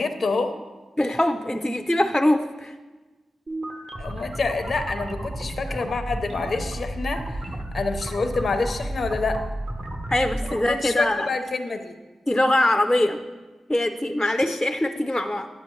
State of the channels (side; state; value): both; normal; correlation 0.94